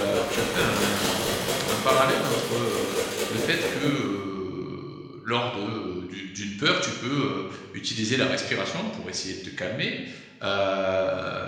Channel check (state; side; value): identical; both; correlation 1.00